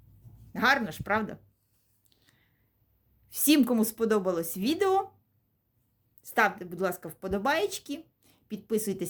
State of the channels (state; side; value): identical; both; correlation 1.00